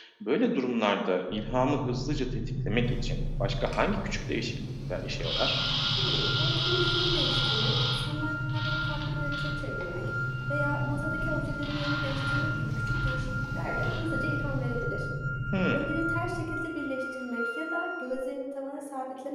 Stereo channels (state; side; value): identical; both; correlation 1.00